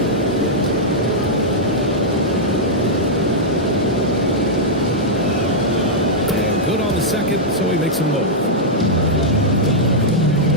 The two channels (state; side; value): normal; both; correlation -0.07